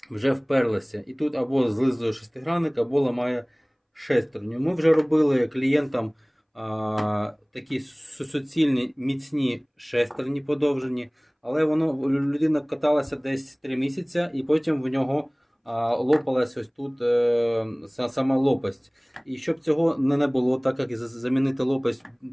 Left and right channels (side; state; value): both; identical; correlation 1.00